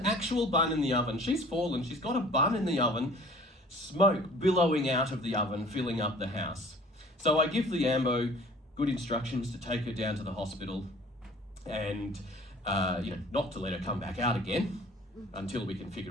actual bun in the oven. She's fallen, she's got a bun in the oven, smoke billowing out of the oven, filling up the house. So I give the ambo good instructions to take her down to the hospital and, not to let her come back out again until we can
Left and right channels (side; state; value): both; normal; correlation 0.49